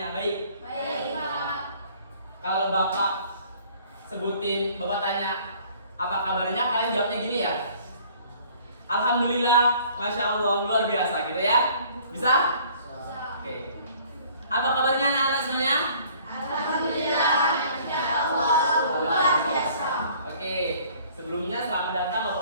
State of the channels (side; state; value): both; inverted; correlation -0.55